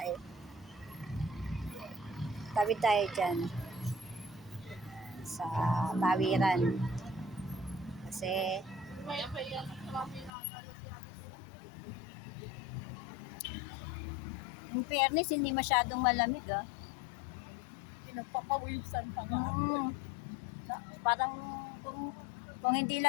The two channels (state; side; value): drops out; right; at 10.3 s